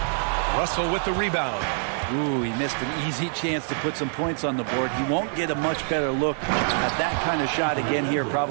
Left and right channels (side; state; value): left; silent; 58 dB below the other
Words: Russell with the rebound. Ooh, he missed an easy chance to put some points on the board. He won't get a much better look at that kind of shot again here